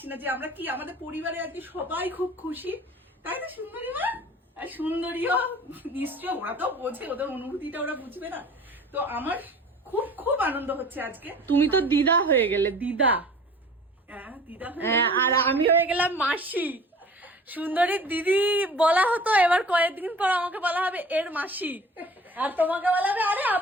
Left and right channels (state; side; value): normal; both; correlation 0.45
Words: না, যে আমরা কি আমাদের পরিবারে আর কি সবাই খুব খুশি, তাই তো সুন্দরী মা? আর সুন্দরীও নিশ্চয়, ওরা তো বোঝে, ওদের অনুভূতিটা ওরা বুঝবে না। তো আমার খুব খুব আনন্দ হচ্ছে আজকে। তুমি তো দিদা হয়ে গেলে, দিদা। হ্যাঁ দিদা, আর আমি হয়ে গেলাম মাসি। সুন্দরীর দিদি বলা হতো, এবার কয়েকদিন পর আমাকে বলা হবে এর মাসি, আর তোমাকে বলা হবে আরে